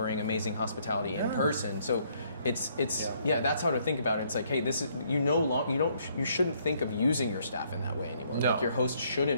amazing hospitality in person. So it's that's how to think about it. It's like, hey, this is you shouldn't think of using your staff in that way anymore. No. Like your host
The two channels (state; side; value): inverted; both; correlation -0.68